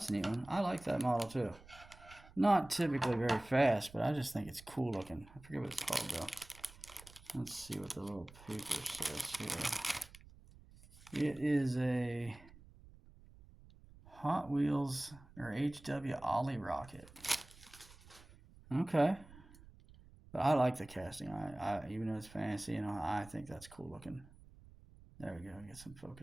a neat one. I like that model too. Not typically very fast, but I just think it's cool looking. I forget what it's called though. Let's see what the little paper says here. It is a Hot Wheels or HW Ollie rocket. Okay. But I like the casting. I even though it's fancy, I think that's cool looking. There we go. Get some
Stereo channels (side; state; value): right; noise; rumble, 21 dB below the sound